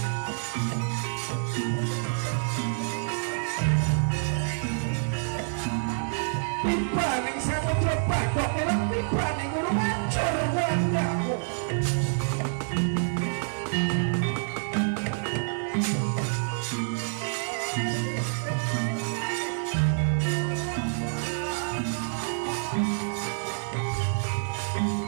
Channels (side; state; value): left; silent; 60 dB below the other